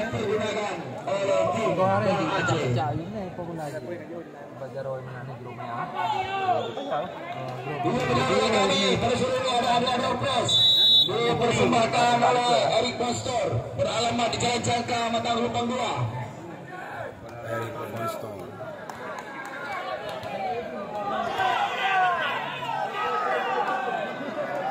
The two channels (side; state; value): both; identical; correlation 1.00